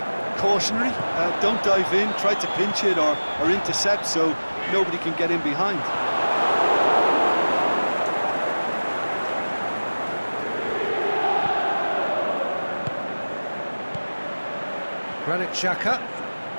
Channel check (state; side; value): inverted; both; correlation -1.00